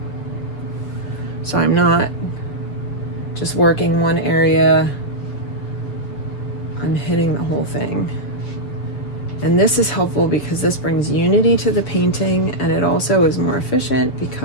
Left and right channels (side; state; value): right; late; 7.2 ms